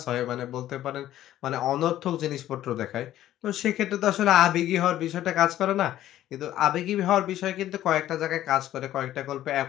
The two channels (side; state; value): right; quieter; 13.0 dB